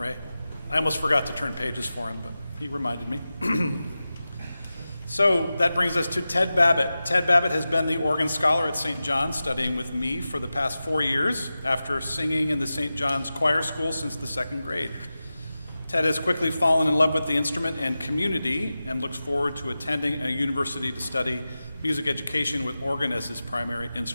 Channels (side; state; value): both; inverted; correlation -0.94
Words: I almost forgot to turn pages for him, but he reminded me. So that brings us to Ted Babbitt. Ted Babbitt has been the organ scholar at St. John's, studying with me for the past 4 years after singing in the St. John's Choir School since the 2nd grade. Ted has quickly fallen in love with the instrument and community and looks forward to attending a university to study music education with organ as his primary